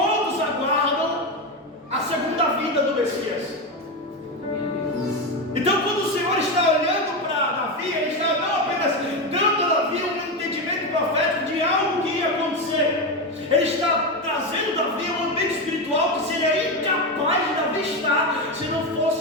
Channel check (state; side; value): normal; both; correlation 0.14